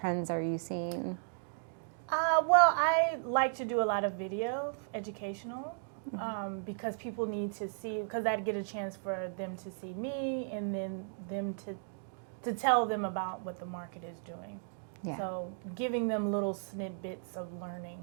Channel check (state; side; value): silent; left; digital silence